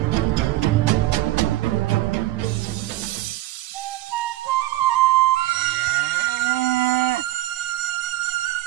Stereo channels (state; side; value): quieter; left; 16.1 dB